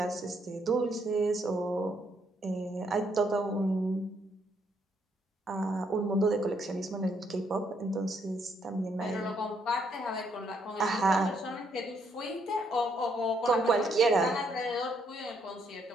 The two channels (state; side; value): normal; both; correlation 0.73